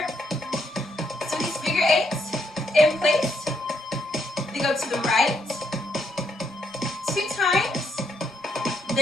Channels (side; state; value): both; normal; correlation 0.76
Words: So these figure 8s in place. They go to the right 2 times,